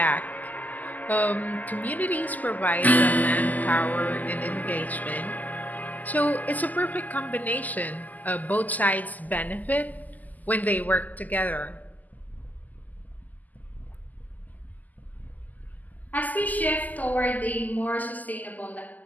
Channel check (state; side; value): late; right; 0.081 ms